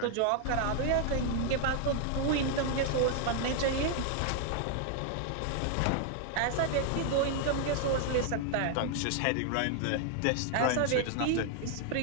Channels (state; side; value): different; both; correlation 0.00